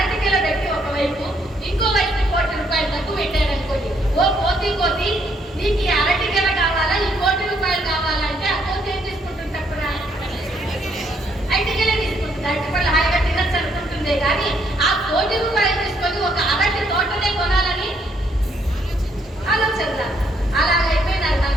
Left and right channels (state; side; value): normal; both; correlation 0.71